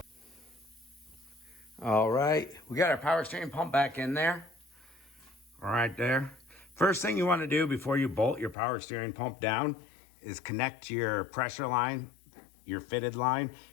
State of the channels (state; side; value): drops out; right; at 8.6 s